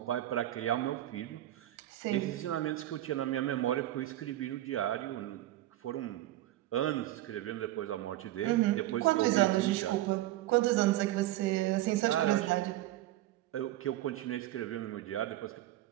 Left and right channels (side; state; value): left; quieter; 14.9 dB